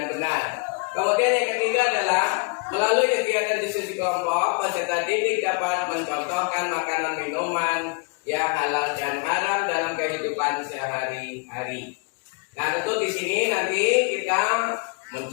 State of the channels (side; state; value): right; quieter; 33.9 dB